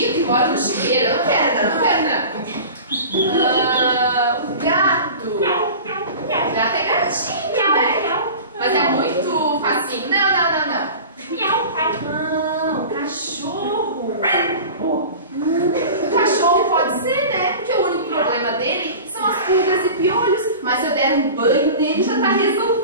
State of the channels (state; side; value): inverted; both; correlation -0.36